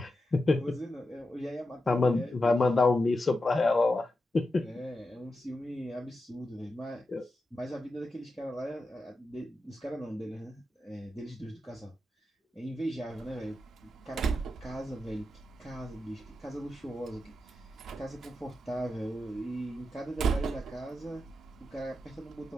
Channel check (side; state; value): both; normal; correlation 0.89